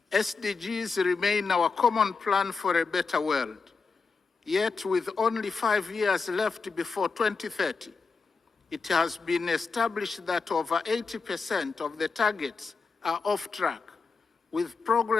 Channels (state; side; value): quieter; right; 4.7 dB